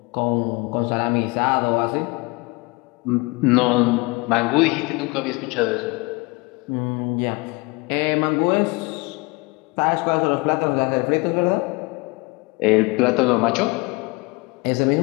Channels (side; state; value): right; quieter; 26.1 dB